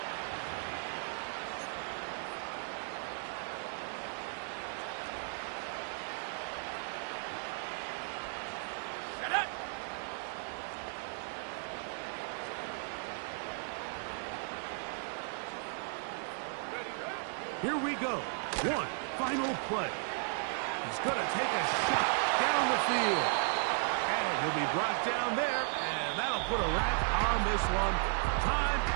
Here we go. One final play. He's going to take a shot down the field. And he'll be brought down there, and that'll put a wrap on this one. Time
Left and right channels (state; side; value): silent; left; 54 dB below the other